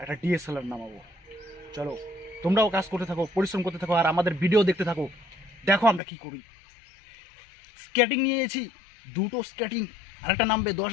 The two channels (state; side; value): drops out; right; at 6.0 s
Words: একটা ডিএসএলআর নামাবো। চলো তোমরাও কাজ করতে থাকো, পরিশ্রম করতে থাকো, আর আমাদের ভিডিও দেখতে থাকো, দেখো আমরা কি করি। স্কেটিং নিয়েছি, দুটো স্কেটিং, আরেকটা নামবে